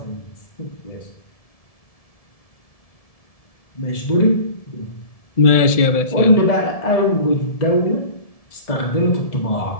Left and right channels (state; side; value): late; right; 1.7 ms